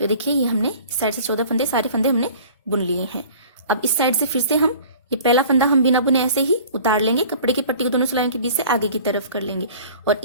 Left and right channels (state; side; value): inverted; both; correlation -0.46